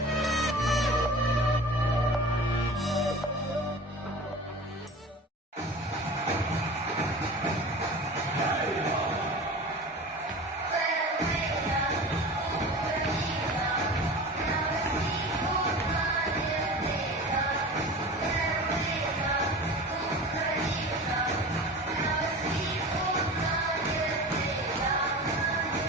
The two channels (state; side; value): normal; both; correlation 0.35